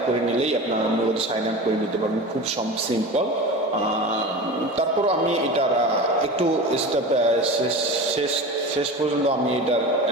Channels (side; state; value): both; normal; correlation 0.31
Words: করে নিলেই আপনারা মূলত সাইন আপ করে নিতে পারবেন, খুব সিম্পল। তারপর আমি এটার একটু স্টেপ শেষ পর্যন্ত আমি এটার